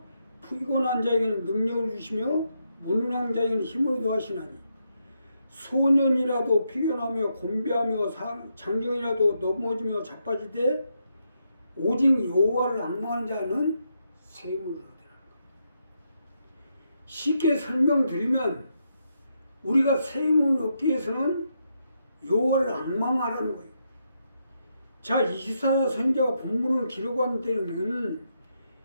피곤한 자에게는 능력을 주시며 무능한 자에게는 힘을 더하시나니 소년이라도 피곤하며 곤비하며 장정이라도 넘어지며 자빠지되 오직 여호와를 앙망하는 자는 새 힘을 얻으라. 쉽게 설명드리면 우리가 새 힘을 얻기 위해서는 여호와를 앙망하라는 거예요. 자, 이사야 선지자가 본문을 기록한 때는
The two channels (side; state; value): both; inverted; correlation -0.81